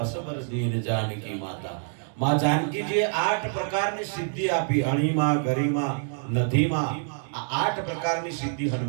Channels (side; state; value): left; silent; digital silence